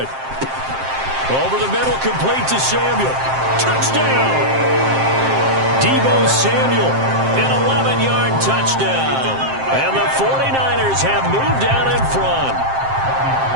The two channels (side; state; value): left; late; 7.6 ms